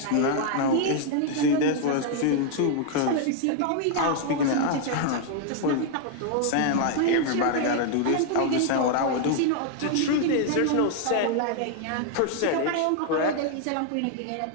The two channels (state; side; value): different; both; correlation 0.00